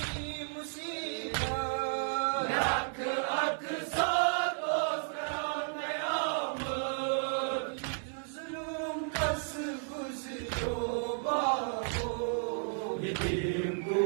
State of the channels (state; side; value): silent; left; 56 dB below the other